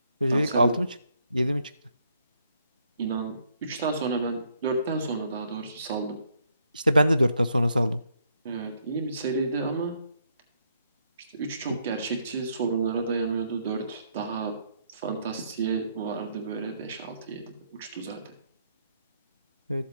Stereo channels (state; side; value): inverted; both; correlation -0.73